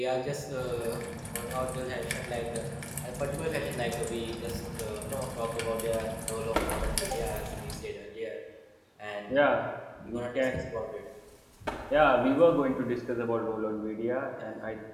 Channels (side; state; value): both; identical; correlation 1.00